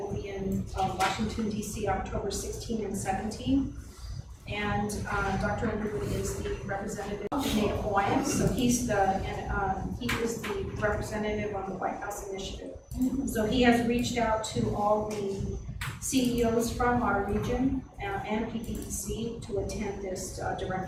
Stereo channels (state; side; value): identical; both; correlation 1.00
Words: be in Washington, D.C., October 16 and 17. And Dr. Underwood is the representative of the Native Hawaiians, so he is the representative on the White House Initiative. So he has reached out to all the CEOs from our region and PPEC to attend this